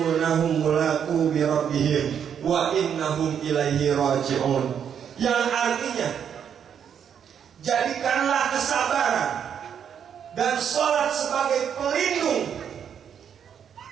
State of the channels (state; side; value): quieter; left; 8.2 dB